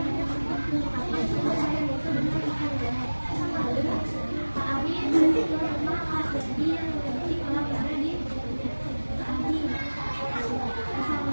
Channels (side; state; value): both; inverted; correlation -1.00